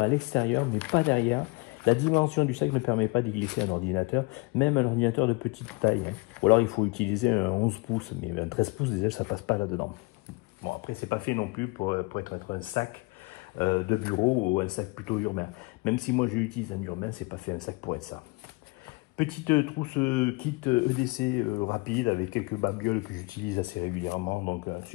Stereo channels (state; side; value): quieter; right; 26.7 dB